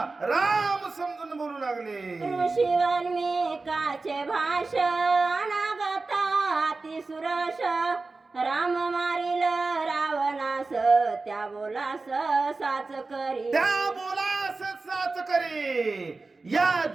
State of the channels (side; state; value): left; quieter; 3.7 dB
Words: राम समजून बोलू लागले. ऋषीवाल्मिकाचे भाषण अनागता सुरश राम मारिल रावणास त्या बोलास साच करी. त्या बोलास साच करी. या